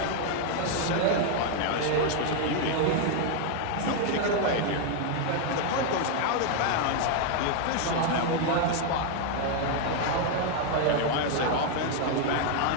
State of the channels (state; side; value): different; both; correlation 0.00